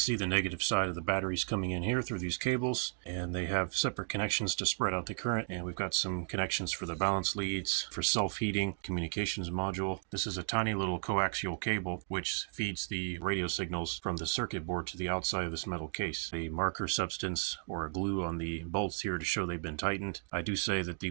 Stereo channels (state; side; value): silent; left; 55 dB below the other